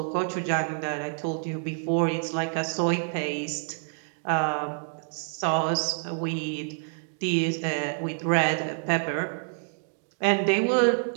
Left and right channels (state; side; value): silent; left; digital silence